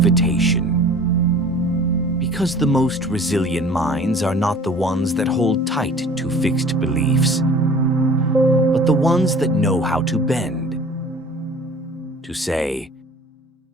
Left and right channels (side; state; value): both; normal; correlation 0.46